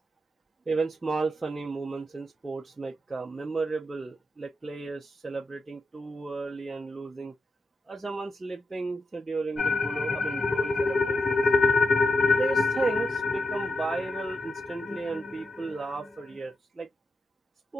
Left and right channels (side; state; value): both; normal; correlation 0.85